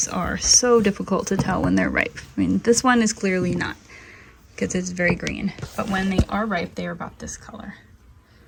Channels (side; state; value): both; identical; correlation 1.00